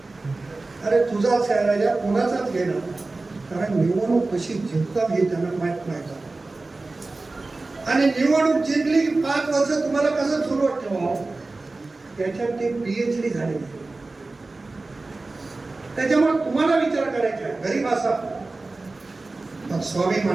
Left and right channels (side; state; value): left; quieter; 3.4 dB